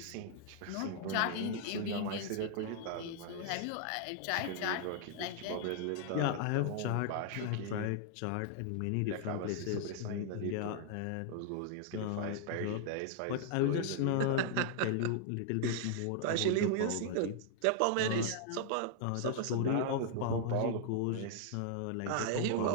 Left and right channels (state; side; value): different; both; correlation -0.01